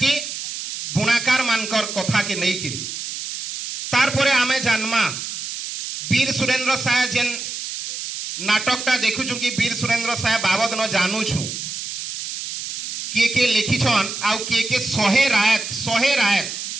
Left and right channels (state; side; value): noise; right; hiss, 7 dB below the sound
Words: की बुणाकार मानकर कथा के नहीं किरी तार परे आमे जानमा वीर सुरेंद्र साय जेन नाटकटा देखुछु कि वीर सुरेंद्र साय बाबद न जानूछु के लिखिछन आउ के सहे रायत